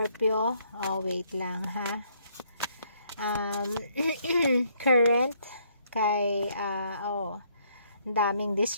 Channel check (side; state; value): both; inverted; correlation -0.68